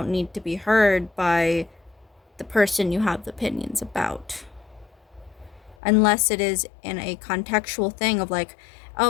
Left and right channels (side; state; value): right; drops out; at 5.8 s